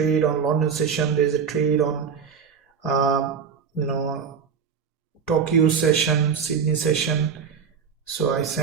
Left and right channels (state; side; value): quieter; left; 6.6 dB